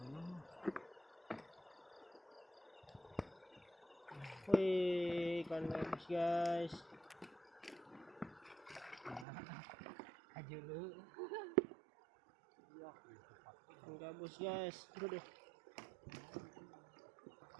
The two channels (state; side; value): drops out; left; at 9.2 s